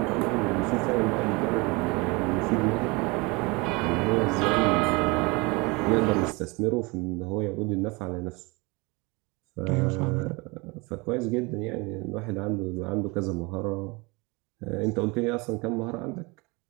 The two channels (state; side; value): quieter; left; 26.3 dB